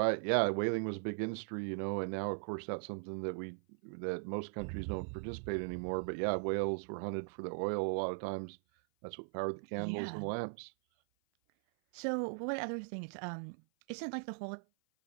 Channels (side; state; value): left; silent; 52 dB below the other